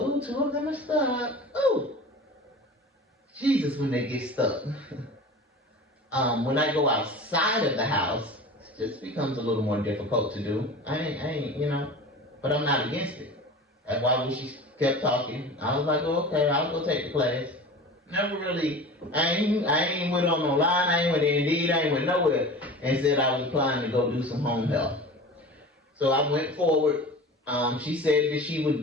two of them are stuck. Ooh, Jesus, when they get stuck. When I go outside of the house, it just becomes a little more difficult to do. I ain't, but I'm not against it. That's why when she kept talking, I was like, oh, okay, I'll go take the class. Never really, I ain't went on no line, I ain't went Indeed, I ain't went nowhere, and said I was applying to go do some home health. So I went forward. She said that she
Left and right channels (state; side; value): normal; both; correlation 0.36